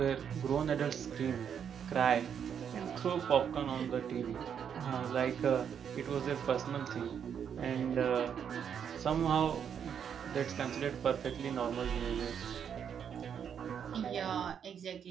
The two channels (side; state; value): left; quieter; 8.0 dB